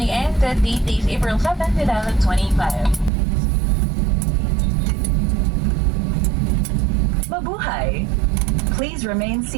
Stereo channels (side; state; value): left; drops out; at 3.1 s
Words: and the date is April 7, 2025. Mabuhay! Please remain